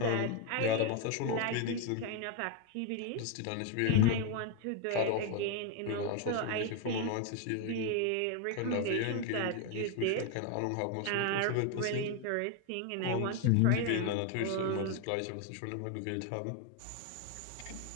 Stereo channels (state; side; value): different; both; correlation 0.01